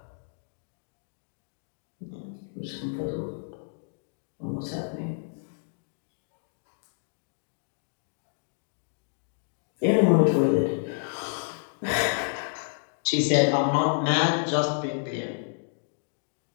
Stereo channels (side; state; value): right; silent; digital silence